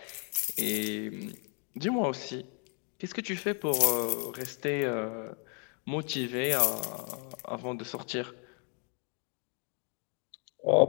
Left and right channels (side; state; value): right; quieter; 38.8 dB